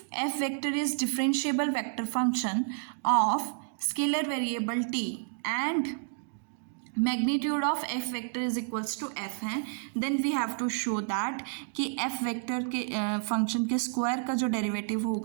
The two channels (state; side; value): silent; left; 58 dB below the other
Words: F vector is differentiable vector function of scalar variable T and magnitude of F vector is equals to F है, then we have to show that कि F vector के function के square का जो derivative